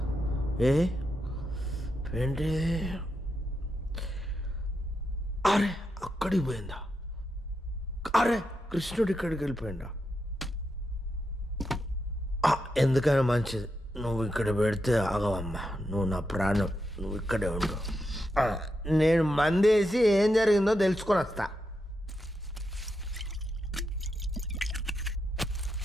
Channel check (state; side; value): normal; both; correlation 0.85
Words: ఏంటి అరే అక్కడికి పోయిందా? అరే కృష్ణుడు ఇక్కడికి వెళ్ళిపోయిందా? ఎందుకైనా మంచిది నువ్వు ఇక్కడ పెడితే ఆగవమ్మా. నువ్వు నా ప్రాణం, నువ్వు ఇక్కడే ఉండు. నేను మందేసి ఏం జరిగిందో తెలుసుకొని వస్తా.